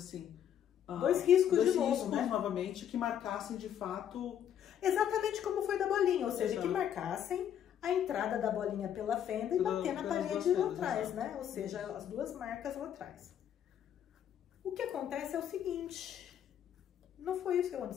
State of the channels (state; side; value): quieter; right; 9.7 dB